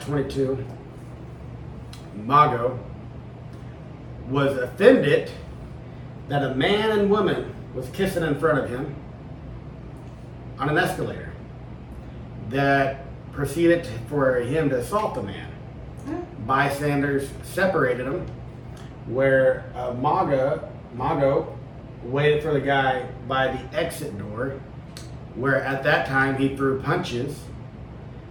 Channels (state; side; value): identical; both; correlation 1.00